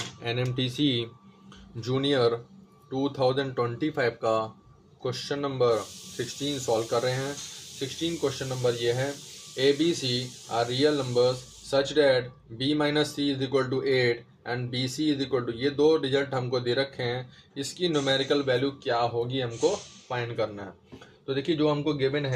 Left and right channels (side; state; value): both; identical; correlation 1.00